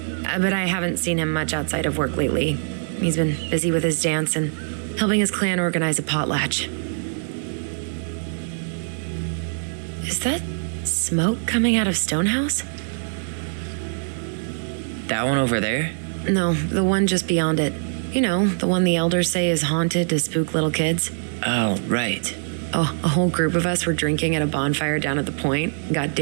But I haven't seen him much outside of work lately. He's been busy with his dance and helping his clan organize a potlatch. Is that smoke coming out of Stonehouse? That one over there? No, the one just beyond it. You know, the one the elders say is haunted to spook little kids. Oh, right. Oh, a whole group of us were drinking at a bonfire down at the point, got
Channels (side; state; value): left; silent; digital silence